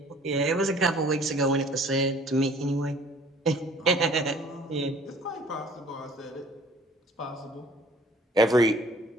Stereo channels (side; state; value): both; normal; correlation 0.53